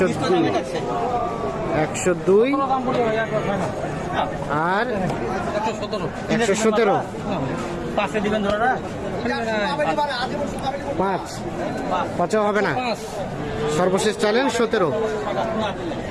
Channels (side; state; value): both; identical; correlation 1.00